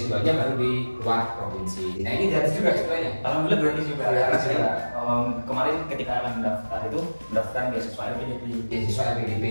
baru di luar provinsi. Nah ini gratis juga sebenarnya. Alhamdulillah gratis juga. Kemarin ketika mendaftarkan beasiswa LPDP.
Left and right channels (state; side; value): inverted; both; correlation -1.00